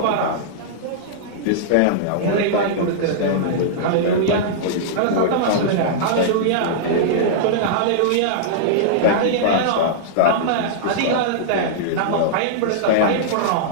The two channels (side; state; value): both; different; correlation -0.02